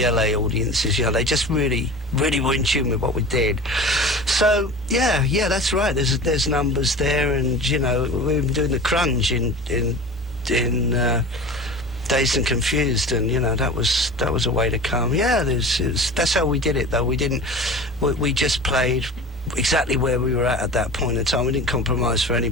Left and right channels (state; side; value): normal; both; correlation 0.36